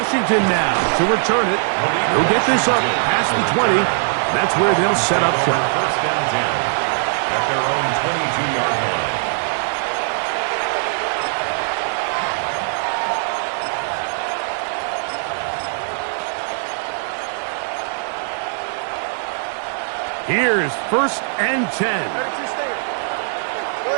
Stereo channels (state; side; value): silent; left; digital silence